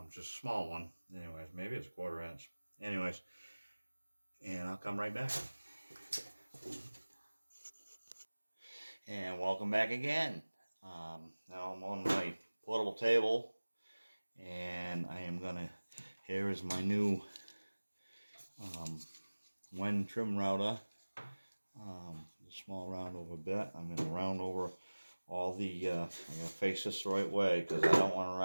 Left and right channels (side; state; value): both; inverted; correlation -1.00